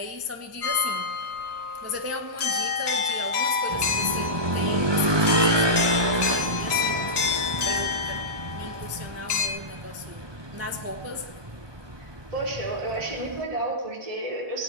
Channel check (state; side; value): late; left; 1.2 ms